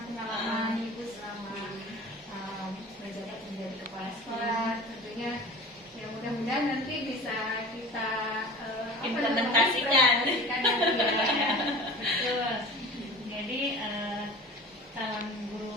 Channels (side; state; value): both; normal; correlation 0.38